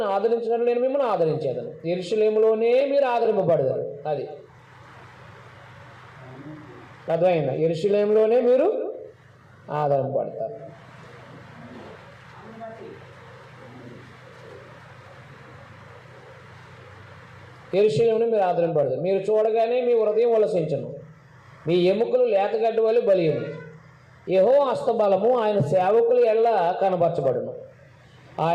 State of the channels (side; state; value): both; identical; correlation 1.00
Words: ఆదరించినట్లు నేను మిమ్మల్ని ఆదరించేదను. యెరూషలేములోనే మీరు ఆదరింపబడతారు. అది అర్థమైందా? యెరూషలేములోనే మీరు ఆదరింపబడతారు. యెరూషలేమును మీరు ఆదరింపబడతారు. మీరు చూడగానే మీ హృదయం ఉల్లసించును, మీ ఎముకలు లేతగడ్డి వలె బలియును. యెహోవా హస్తబలము ఆయన సేవకుల ఎల్ల కనబరచబడును.